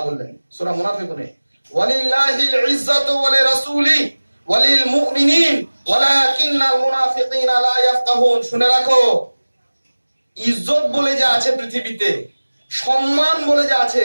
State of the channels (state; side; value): inverted; both; correlation -1.00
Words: বললেন সূরা মুনাফিকুনে, ওয়ালিল্লাহিল ইজ্জাতু ওয়া লিরাসূলিহি ওয়া লিল মুমিনিন ওয়ালাকিন্নাল মুনাফিকিনা লা ইয়াফকাহুন। শুনে রাখো, ইজ্জত বলে যা আছে পৃথিবীতে, সম্মান বলে যা আছে,